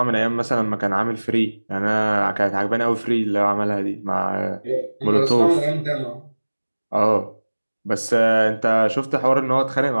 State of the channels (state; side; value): inverted; both; correlation -1.00